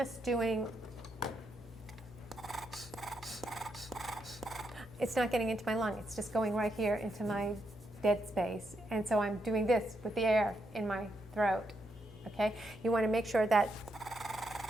doing, it's not getting into my lung. It's just going right here into my dead space. And so I'm doing this with the air in my throat, okay? You want to make sure that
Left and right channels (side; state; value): both; normal; correlation 0.80